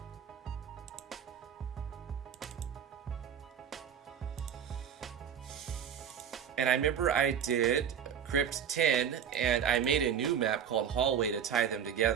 And I remember I did Crypt 10, and I made a new map called Hallway to tie them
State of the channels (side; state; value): left; quieter; 8.3 dB